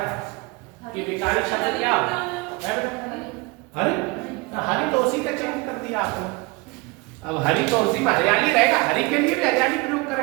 था कि विकारी शब्द क्या है? हरी, हरी तो उसी का चेंज कर दिया आपने। अब हरी तो उसी में हरियाली रहेगा, हरी के लिए भी हरियाली प्रयोग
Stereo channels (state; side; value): quieter; left; 25.7 dB